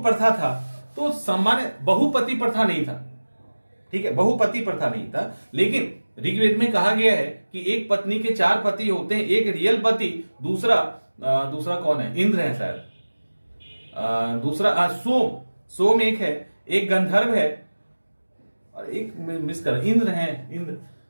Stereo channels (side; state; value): both; inverted; correlation -1.00